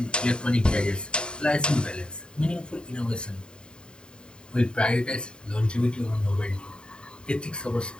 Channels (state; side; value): late; right; 0.049 ms